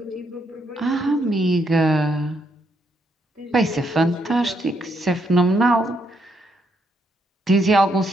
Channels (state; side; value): normal; both; correlation 0.76